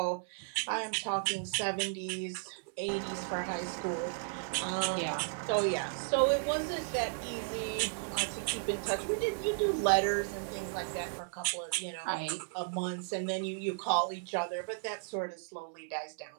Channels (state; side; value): silent; left; 55 dB below the other